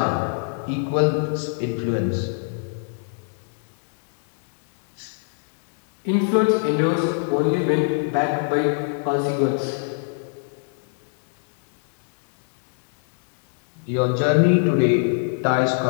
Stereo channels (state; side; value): silent; right; digital silence